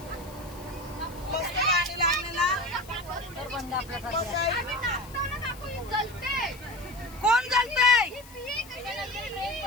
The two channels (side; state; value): left; noise; hiss, 20 dB below the sound